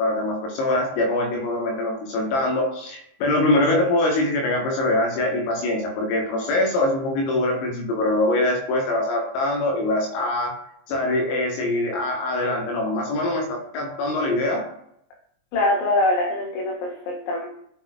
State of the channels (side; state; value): right; late; 22 ms